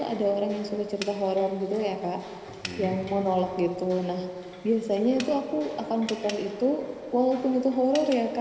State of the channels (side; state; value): both; identical; correlation 1.00